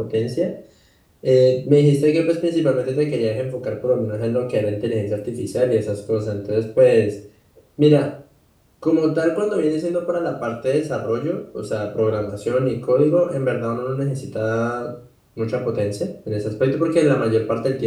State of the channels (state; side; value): identical; both; correlation 1.00